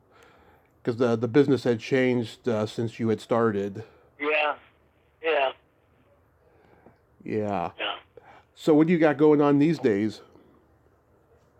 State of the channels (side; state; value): both; identical; correlation 1.00